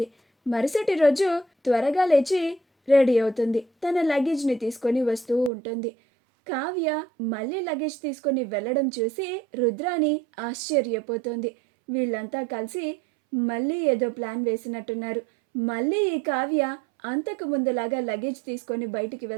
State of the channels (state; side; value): drops out; left; at 5.5 s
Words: మరుసటి రోజు త్వరగా లేచి రెడీ అవుతుంది. తన లగేజ్ని తీసుకొని వస్తూ ఉంటుంది. కావ్య మళ్ళీ లగేజ్ తీసుకొని వెళ్ళడం చూసి రుద్రాని ఆశ్చర్యపోతుంది. వీళ్ళంతా కలిసి మళ్ళీ ఏదో ప్లాన్ వేసినట్టున్నారు. మళ్ళీ ఈ కావ్య అంతకు ముందులాగా లగేజ్ తీసుకొని బయటికి